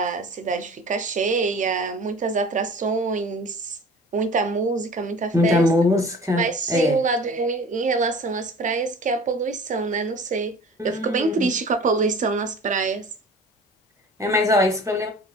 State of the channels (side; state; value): both; normal; correlation 0.43